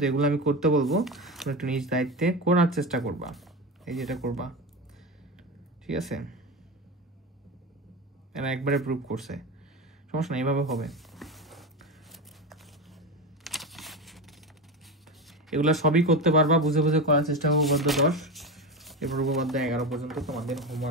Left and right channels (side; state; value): both; normal; correlation 0.21